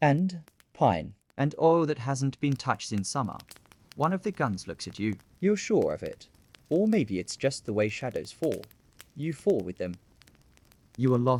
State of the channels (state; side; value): identical; both; correlation 1.00